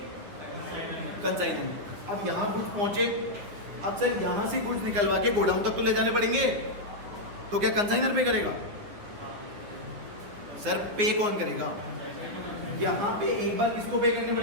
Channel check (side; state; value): left; late; 9.8 ms